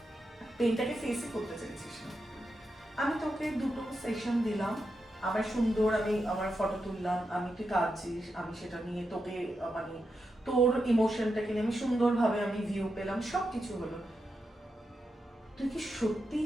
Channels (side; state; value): both; normal; correlation 0.86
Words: পেইনটাকে ফেসই করতে চাইছিস না। আমি তোকে 2টো সেশন দিলাম, আমার সুন্দর, আমি আমার ফটো তুললাম, আমি তুই কাঁদছিস, আমি সেটা নিয়ে তোকে মানে তোর ইমোশনটাকে নিয়ে আমি সুন্দরভাবে আমি ভিউ পেলাম, সব কিছু হলো। তুই কি সত্যি